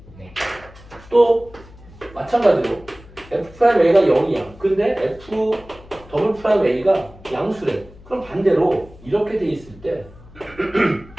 네. 또 마찬가지로 f 프라임 a가 0이야. 근데 f 더블 프라임 a가 양수래. 그럼 반대로 이렇게 돼 있을 때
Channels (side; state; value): left; noise; hum, 21 dB below the sound